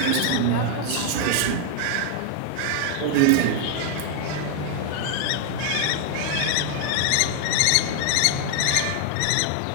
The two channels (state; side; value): different; both; correlation 0.00